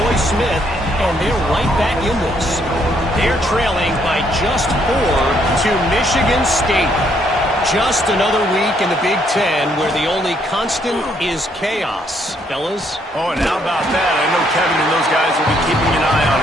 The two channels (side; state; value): both; normal; correlation 0.70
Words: Smith, and they're right back in this. They're trailing by just 4 to Michigan State. Just another week in the Big Ten where the only constant is chaos, fellas. Oh, and how about that? I know Kevin and those guys will be keeping an eye on